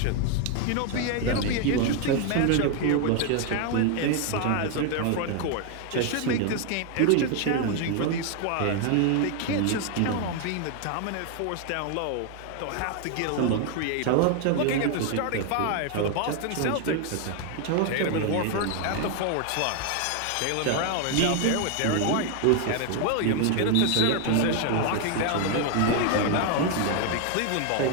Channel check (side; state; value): both; different; correlation 0.01